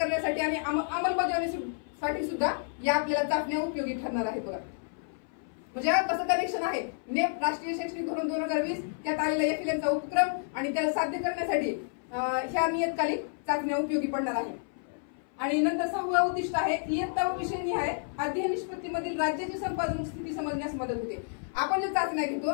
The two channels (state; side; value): silent; right; 58 dB below the other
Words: आणि अंमलबजावणीसाठी सुद्धा या आपल्याला चाचण्या उपयोगी ठरणार आहे. बघा म्हणजे कसं कनेक्शन आहे नेप राष्ट्रीय शैक्षणिक धोरण 2020 त्यात आलेला FLN चा उपक्रम आणि त्याला साध्य करण्यासाठी ह्या नियतकालिक चाचण्या उपयोगी पडणार आहे. आणि नंतर 6वा उद्दिष्ट आहे इयत्ता व विषयनिहाय अध्ययन निष्पत्तीमधील राज्याची संपादन स्थिती समजण्यास मदत होते. आपण जे चाचण्या घेतो